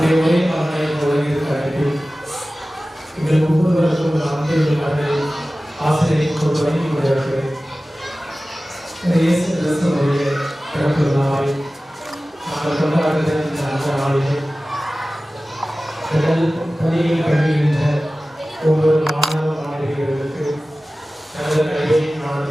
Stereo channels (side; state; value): both; normal; correlation 0.96